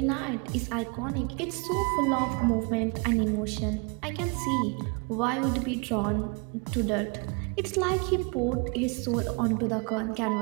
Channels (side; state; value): left; quieter; 33.3 dB